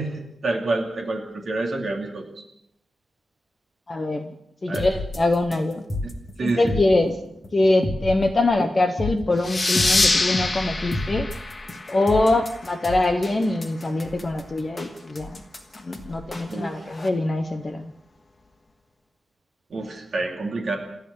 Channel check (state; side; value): normal; both; correlation 0.93